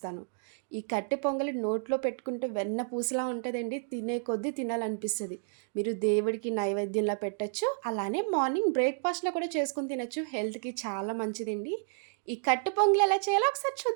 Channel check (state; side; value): silent; left; digital silence